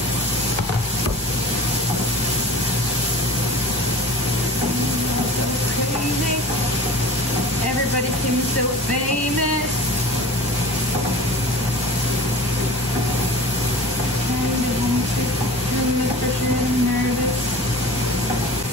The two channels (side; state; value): both; normal; correlation 0.38